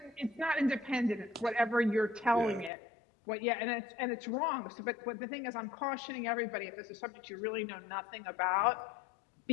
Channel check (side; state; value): right; drops out; at 2.7 s